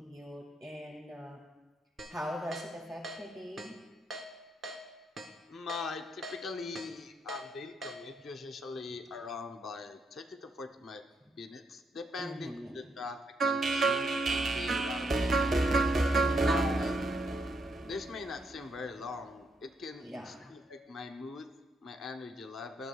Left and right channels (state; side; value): normal; both; correlation 0.77